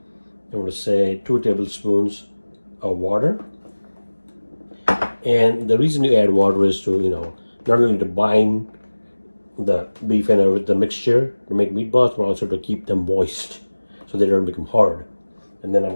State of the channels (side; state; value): both; inverted; correlation -1.00